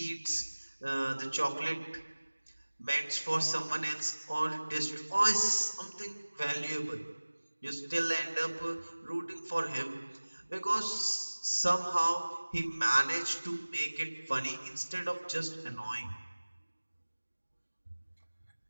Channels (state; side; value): inverted; both; correlation -1.00